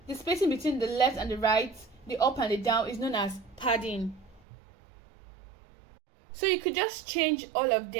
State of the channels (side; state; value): left; drops out; at 4.4 s